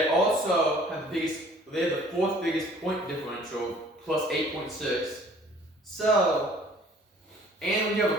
also have the 4th biggest point differential, plus 8.6. So, and when you have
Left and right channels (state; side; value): normal; both; correlation 0.54